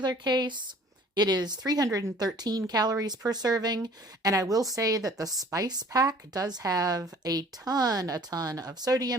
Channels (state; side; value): normal; both; correlation 0.52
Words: case, it is 313 calories per serving, and I will say that the spice pack does have a ton of